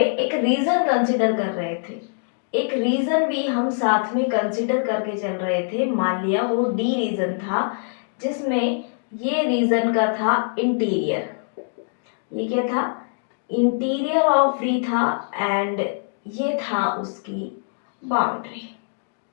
एक रीजन कंसिडर कर रहे थे। एक रीजन भी हम साथ में कंसिडर करके चल रहे थे। मान लिया वो डी रीजन था, जिसमें ये रीजन का था इंटीरियर। ये क्या था? इंटीरियर ऑफ डी था, एंड ये था उसकी बाउंड्री।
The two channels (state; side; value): silent; right; digital silence